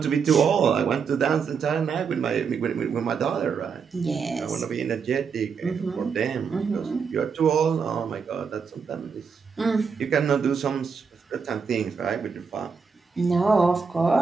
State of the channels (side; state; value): left; quieter; 5.8 dB